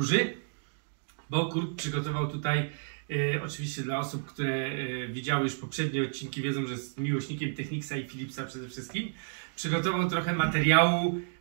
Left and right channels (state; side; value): silent; left; digital silence